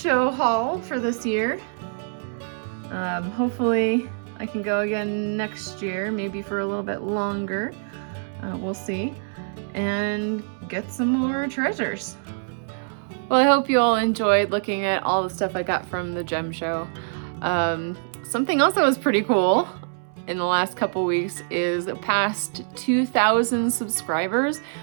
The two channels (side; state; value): left; silent; 62 dB below the other